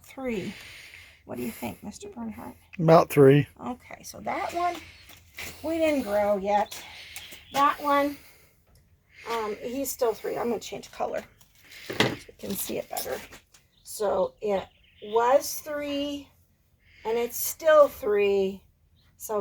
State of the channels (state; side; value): identical; both; correlation 1.00